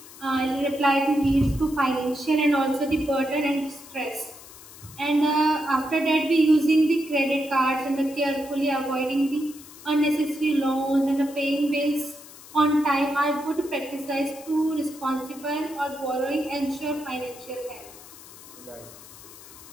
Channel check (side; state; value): left; noise; hiss, 18 dB below the sound